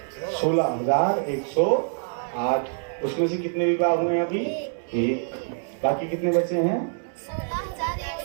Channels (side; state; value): left; silent; digital silence